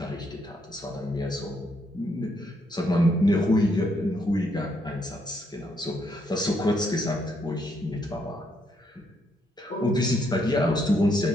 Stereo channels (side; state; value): both; normal; correlation 0.74